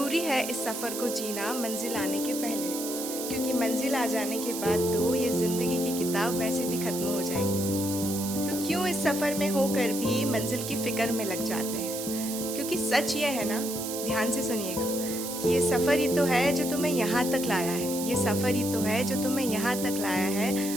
है इस सफ़र को जीना मंजिल आने के पहले, क्योंकि मंजिल आ जाने के बाद तो ये ज़िंदगी की किताब वैसे भी ख़त्म हो जाएगी। तो क्यों इस सफ़र में होकर भी मंजिल की फ़िक्र में लग जाते हैं, क्योंकि सच ये है ना, ध्यान से सुनिएगा, कि ये सफ़र ही तो है जो तुम्हें यहाँ तक लाया है। ये सफ़र ही तो है जो तुम्हें यहाँ तक लाया है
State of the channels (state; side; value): noise; right; hiss, 6 dB below the sound